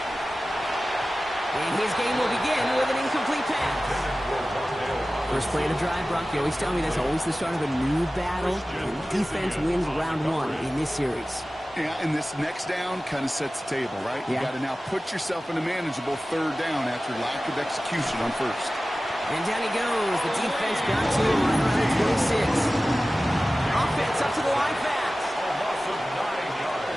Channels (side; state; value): both; normal; correlation 0.96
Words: And his game will begin with an incomplete pass. First play of the drive, Brock. You always tell me that's always the start of a new battle. And defense wins round one in this series. Yeah, and this next down kind of sets the table, right? You got to now put yourself in a manageable 3rd down after lack of execution on 1st. And down he goes. The defense got to him right around the 26. Offense up to the line fast. A loss of 9 yards.